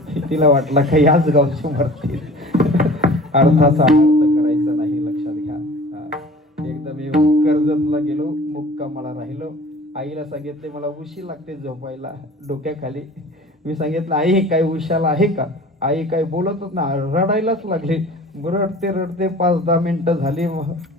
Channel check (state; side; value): normal; both; correlation 0.44